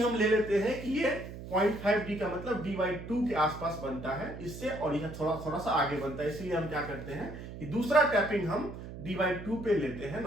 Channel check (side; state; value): right; noise; hum, 11 dB below the sound